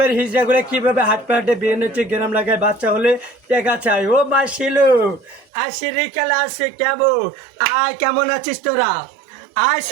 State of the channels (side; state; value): left; drops out; at 5.5 s